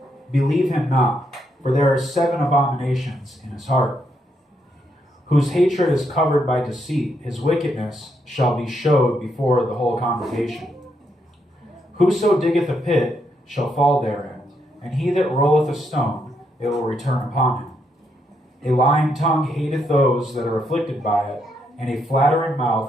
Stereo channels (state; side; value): normal; both; correlation 0.77